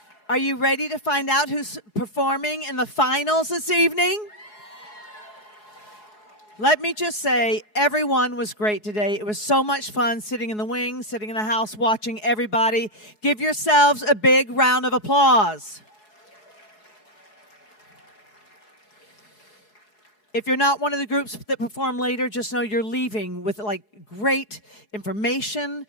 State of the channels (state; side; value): late; right; 4.7 ms